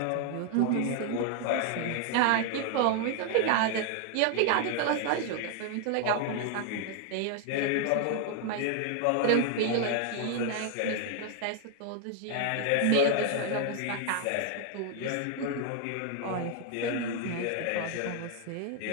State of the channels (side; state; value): both; different; correlation 0.00